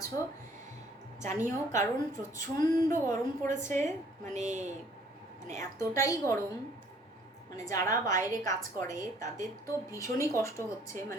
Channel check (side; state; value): both; normal; correlation 0.59